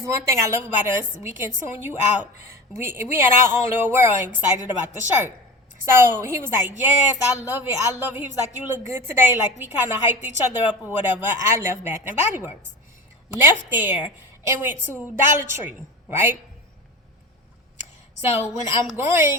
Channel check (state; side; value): normal; both; correlation 0.32